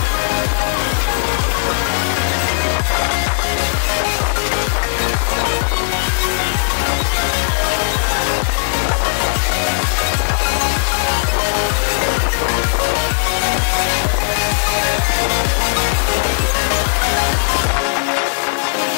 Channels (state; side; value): silent; right; digital silence